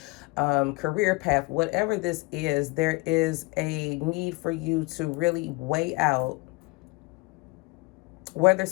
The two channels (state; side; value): quieter; right; 26.6 dB